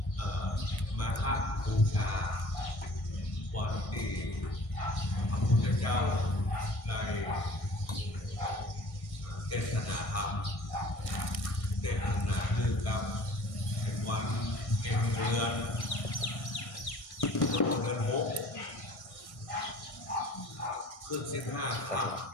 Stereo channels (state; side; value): late; right; 1.6 ms